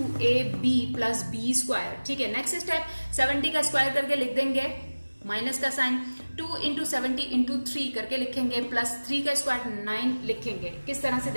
plus b square, ठीक है। नेक्स्ट स्टेप 70 का स्क्वायर करके लिख देंगे, माइनस का साइन, 2 इंटू 70 इंटू 3 करके लिखेंगे, प्लस 3 का स्क्वायर 9 लिखेंगे। किस तरह से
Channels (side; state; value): both; inverted; correlation -1.00